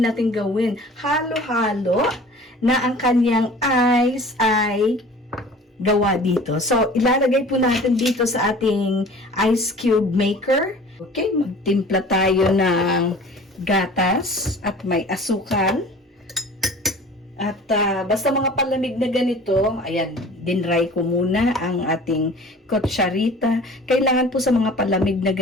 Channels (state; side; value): normal; both; correlation 0.44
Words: gawin? Halo-halo na ang kanyang ice ay gawa dito. So, ilalagay po natin dito sa ating ice cube maker. Okay, magtimpla tayo ng gatas at may asukal. At basta mga palamig na ganito, ayan, dinry ko muna ang ating kutsarita. Kailangan po sa mga palamig na